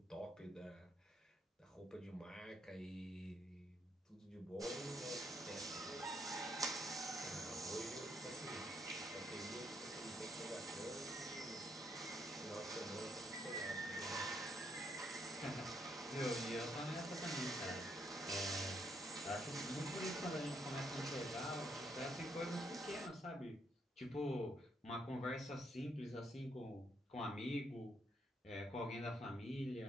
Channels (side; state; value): both; normal; correlation 0.74